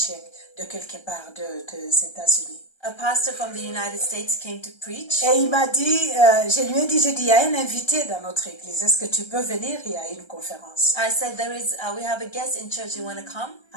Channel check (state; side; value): late; right; 1.3 ms